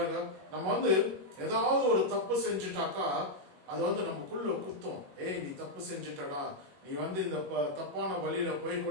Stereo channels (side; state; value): left; late; 21 ms